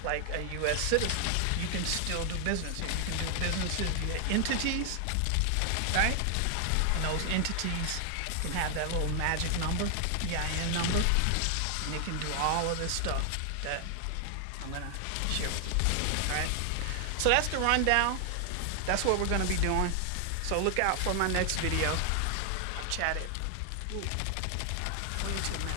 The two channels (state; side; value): different; both; correlation 0.00